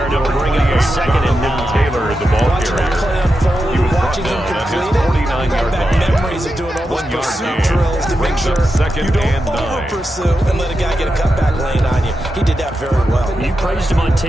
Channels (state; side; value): normal; both; correlation 0.89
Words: and it'll bring up a 2nd and 9. Taylor, the ball carrier. He was brought down at his 49-yard line. Memories of doing all those pursuit drills to make sure you don't over-pursue and let a guy get a cutback lane on you. He did that very well. You praised him on